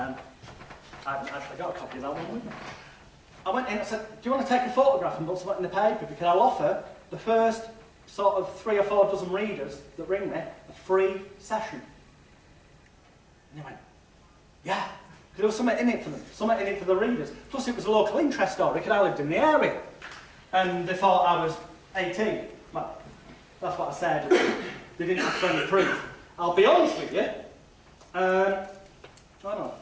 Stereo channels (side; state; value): both; identical; correlation 1.00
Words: haven't actually got a copy of that one with me. I went in and I said, "Do you want to take a photograph and put something in the paper? Because I'll offer the first sort of 3 or 4 dozen readers that ring me a free session." And they went, "Yeah," because there was something in it for them, something in it for the readers. Plus it was a local interest story because I lived in the area. And they thought I was 18. Well, that's what I said. They didn't have any proof. I'll be honest with you. I'll